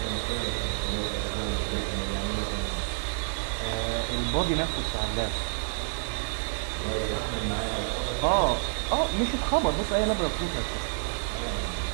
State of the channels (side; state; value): left; silent; digital silence